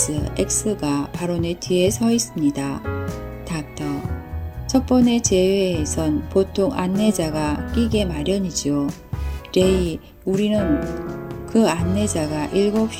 X가 바로 내 뒤에 서 있습니다. 닥터. 첫 번의 제외에선 보통 안내자가 끼게 마련이죠. 레이, 우리는 그 안내자가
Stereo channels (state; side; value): identical; both; correlation 1.00